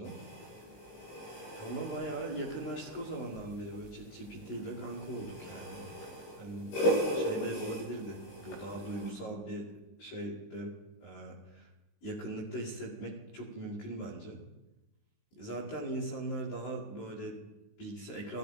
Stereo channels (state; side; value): late; right; 19 ms